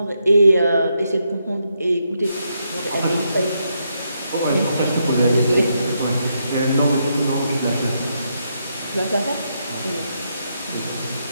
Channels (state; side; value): inverted; both; correlation -0.80